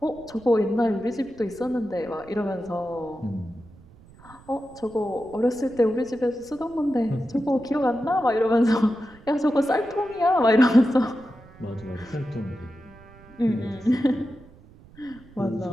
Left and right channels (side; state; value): right; noise; rumble, 23 dB below the sound